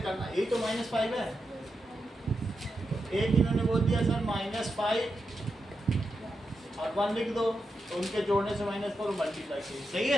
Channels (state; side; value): normal; both; correlation 0.87